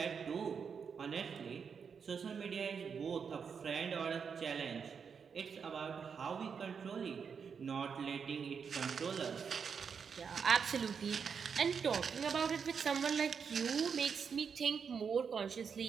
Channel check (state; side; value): quieter; left; 6.4 dB